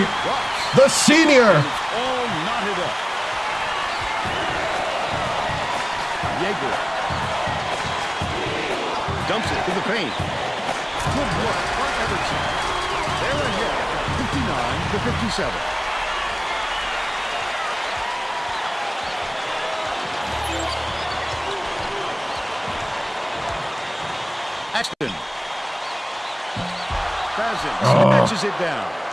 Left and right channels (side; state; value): both; identical; correlation 1.00